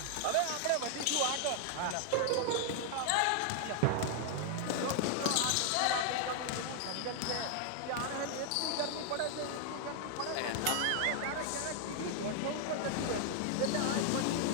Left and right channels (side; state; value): both; different; correlation 0.00